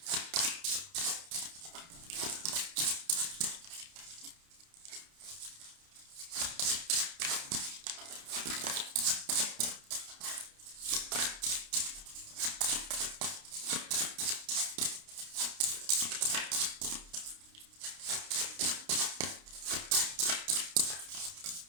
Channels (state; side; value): late; left; 30 ms